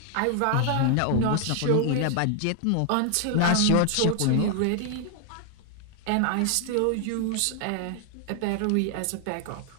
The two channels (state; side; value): different; both; correlation 0.00